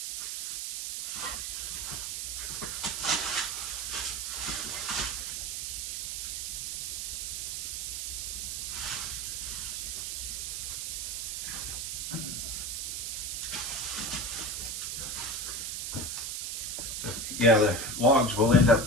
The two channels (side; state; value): right; noise; hiss, 2 dB below the sound